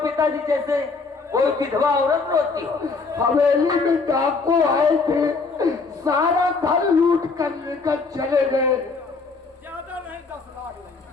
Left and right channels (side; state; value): right; quieter; 4.3 dB